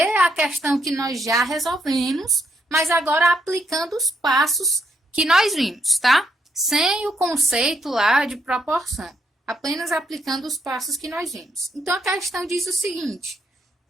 a questão que nós já resolvemos, mas agora aplicando os passos que nós vimos, tá? Sem o conceito lá de proporção, apenas aplicando os passos que nós vimos. Então, a questão diz o seguinte:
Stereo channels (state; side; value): normal; both; correlation 0.75